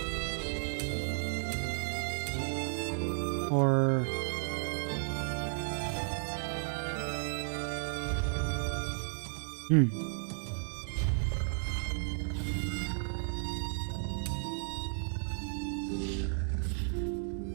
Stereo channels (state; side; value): silent; left; digital silence